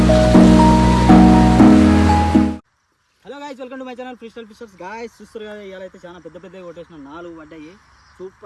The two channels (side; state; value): both; identical; correlation 1.00